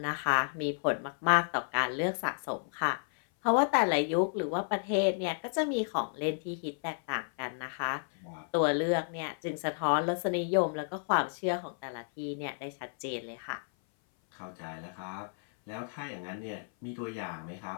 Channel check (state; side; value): silent; right; 56 dB below the other